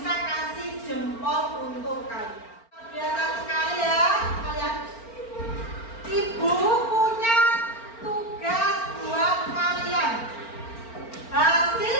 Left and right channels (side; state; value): right; late; 4.4 ms